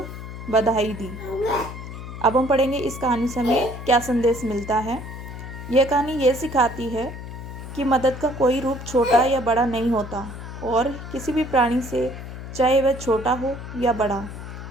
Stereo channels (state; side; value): noise; left; hum, 10 dB below the sound